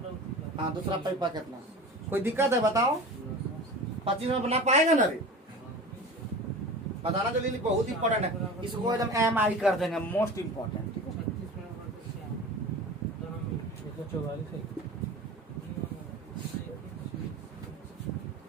हाँ, दूसरा पाइपा कितना? कोई दिक्कत है बताओ? 25 में बना पाएगा ना रे? बताना जल्दी, बहुत इंपॉर्टेंट है। इसको एकदम MI कर देंगे, मोस्ट इम्पोर्टेंट। ठीक है, 44 है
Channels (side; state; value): both; normal; correlation 0.35